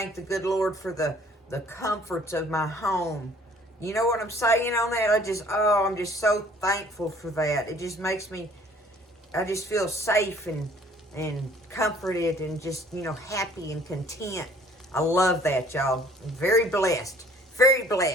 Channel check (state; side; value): normal; both; correlation 0.56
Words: the good Lord for the comforts of my home. You know what I'm saying on that? I'm just so thankful for that. It just makes me, I just feel safe and comforted and just, happy and content. I love that, y'all. I'm very blessed. Very